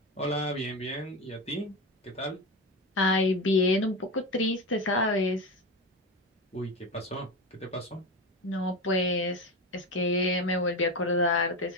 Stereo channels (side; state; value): both; normal; correlation 0.21